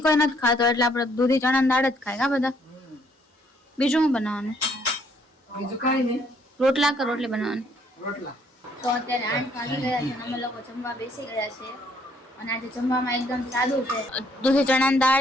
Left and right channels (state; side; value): normal; both; correlation 0.66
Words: કોઈ નથી ખાતો, એટલે આપણે દૂધી ચણાની દાળ જ ખાય આ બધા. બીજું શું બનાવવાનું? બીજું કઈ નહીં. રોટલા કે રોટલી બનાવવાની? રોટલા. તો અત્યારે 8 વાગી ગયા છે અને અમે લોકો જમવા બેસી ગયા છે, અને આજે જમવામાં એકદમ સાદું છે. દૂધી ચણાની